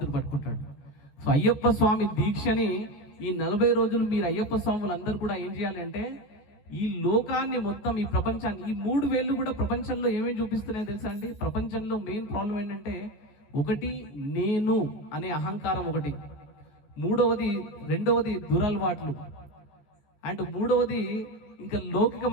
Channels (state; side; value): late; right; 14 ms